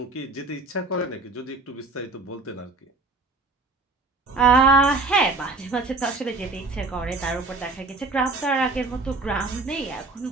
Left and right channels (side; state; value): left; quieter; 3.5 dB